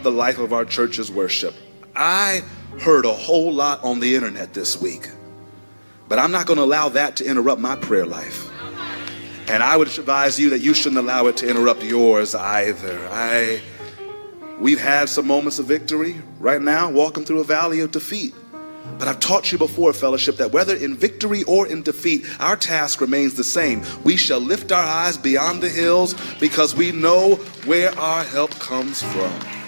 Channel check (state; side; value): inverted; both; correlation -1.00